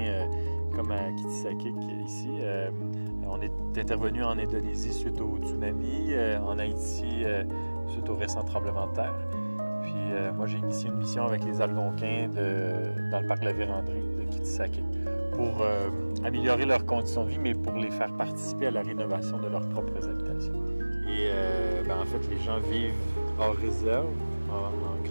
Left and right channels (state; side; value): inverted; both; correlation -1.00